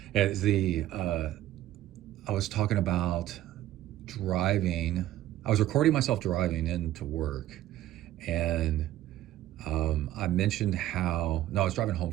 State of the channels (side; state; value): left; quieter; 13.9 dB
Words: And I was talking about driving. I was recording myself driving into work, and I mentioned how, no, I was driving home